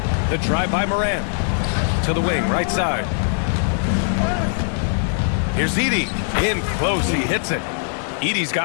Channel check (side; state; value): right; silent; 62 dB below the other